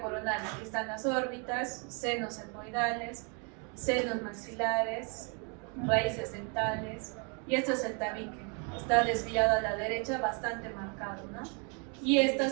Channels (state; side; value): quieter; left; 36.4 dB